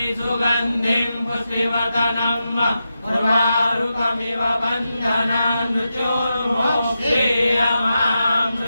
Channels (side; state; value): both; inverted; correlation -0.88